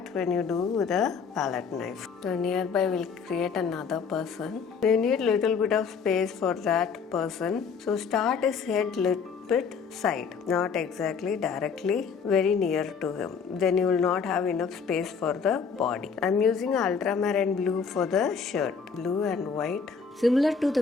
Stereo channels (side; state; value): right; quieter; 5.8 dB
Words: when you do with a palette knife. So nearby we'll create another person. You need little bit of space for that person. So start his head little bit side, not exactly directly very near to him. Then you will not have enough space for the body. I'm using ultramarine blue for the shirt, blue and white. Similar to